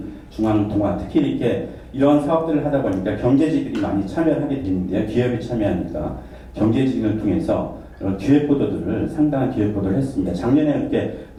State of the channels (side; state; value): both; identical; correlation 1.00